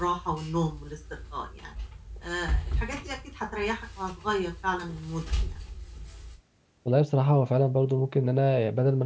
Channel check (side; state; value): both; identical; correlation 1.00